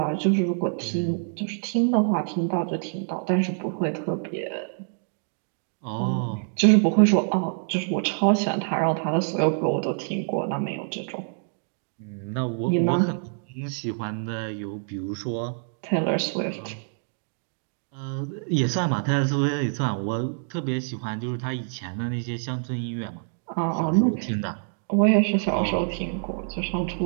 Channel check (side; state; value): left; silent; digital silence